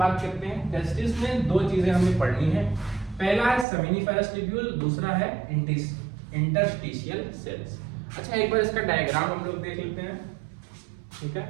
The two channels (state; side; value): drops out; left; at 3.7 s